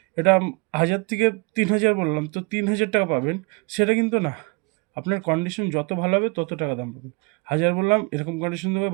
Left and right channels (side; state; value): left; quieter; 30.3 dB